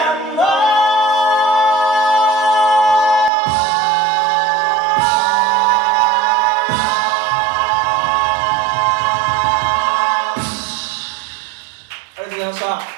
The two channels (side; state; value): left; drops out; at 3.3 s